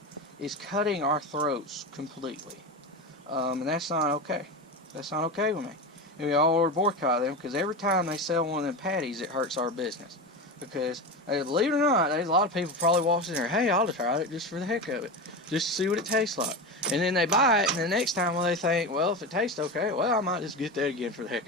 is cutting our throats completely, and that's not okay. That's not okay with me. And we all ought to boycott them, because every time they sell one of them patties, it hurts our business. Because, believe it or not, there's a lot of people probably walks in there, hey, I'll try it just for the heck of it, just to see what it tastes like. And then they buy it, and the next time they think, well, if it tastes okay, well, I might just get that again for the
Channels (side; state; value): both; normal; correlation 0.22